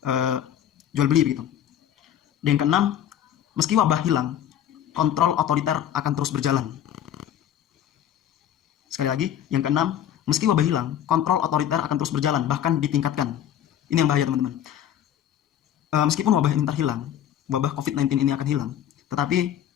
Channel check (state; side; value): quieter; right; 10.4 dB